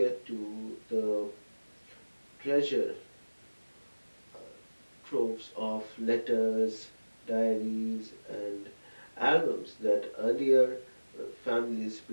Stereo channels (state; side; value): inverted; both; correlation -1.00